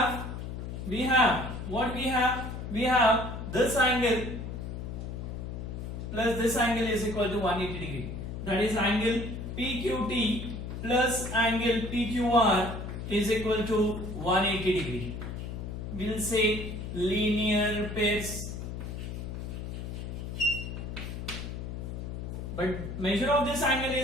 what we have? We have this angle plus this angle is equal to 180 degree. That is angle PQT plus angle PQR is equal to 180 degree. We'll say linear pairs. But measure of this angle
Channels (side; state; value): left; noise; hum, 7 dB below the sound